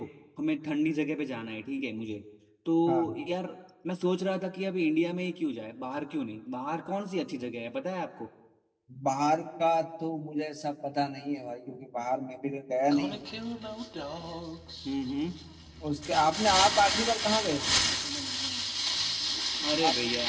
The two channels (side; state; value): both; identical; correlation 1.00